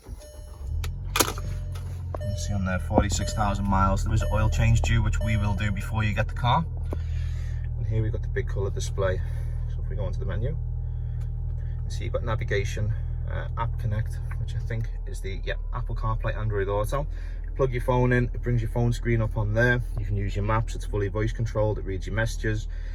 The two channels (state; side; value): identical; both; correlation 1.00